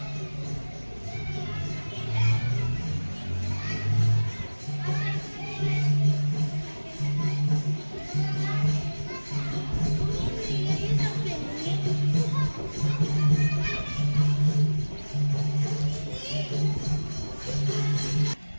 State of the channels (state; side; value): inverted; both; correlation -1.00